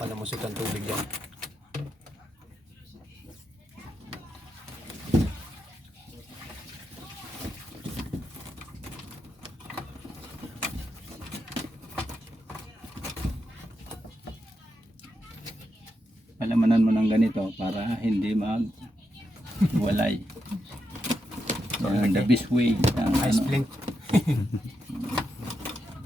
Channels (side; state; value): both; normal; correlation 0.85